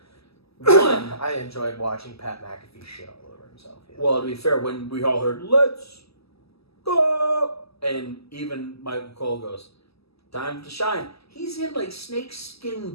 One, I enjoyed watching Pat McAfee shit all over himself. Yeah. Well, to be fair, when we all heard "Let's go," and even Michael Cole goes, "Time to shine." He's in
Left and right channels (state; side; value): late; right; 0.78 ms